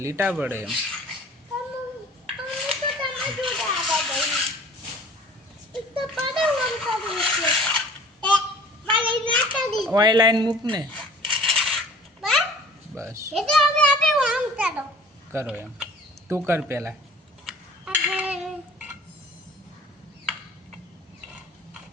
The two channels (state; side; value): normal; both; correlation 0.48